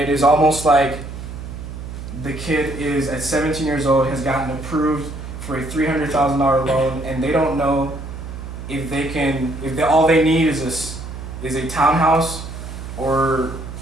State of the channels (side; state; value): right; noise; hum, 10 dB below the sound